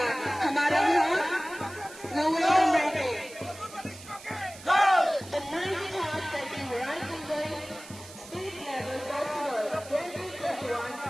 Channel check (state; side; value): noise; right; hiss, 17 dB below the sound